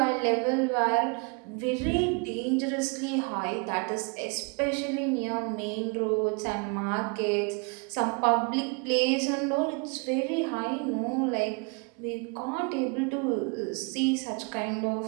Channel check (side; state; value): left; quieter; 33.7 dB